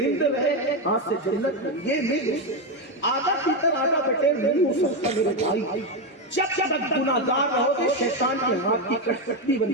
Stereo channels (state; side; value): normal; both; correlation 0.08